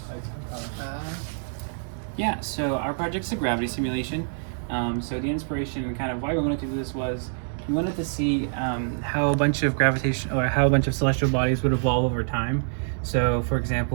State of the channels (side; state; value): left; silent; digital silence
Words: Yeah, so our project's a gravity simulation. So the inspiration and kind of why we wanted to do this was we wanted to see how a bunch of celestial bodies would evolve over time. So for